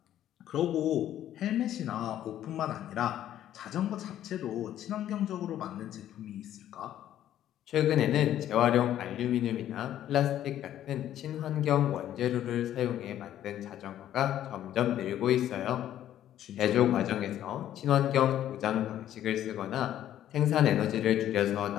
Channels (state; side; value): quieter; right; 11.8 dB